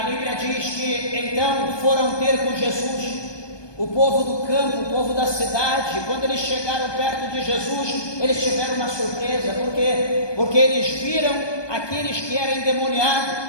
Bíblia diz que então foram ter com Jesus o povo do campo, o povo da cidade. Quando eles chegaram perto de Jesus, eles tiveram uma surpresa, porque eles viram aqueles que eram endemoniados,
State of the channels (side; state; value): right; late; 1.2 ms